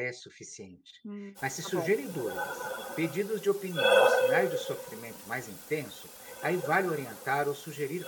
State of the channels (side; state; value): both; identical; correlation 1.00